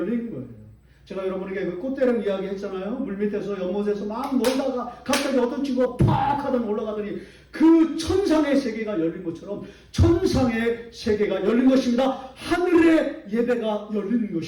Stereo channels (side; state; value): both; identical; correlation 1.00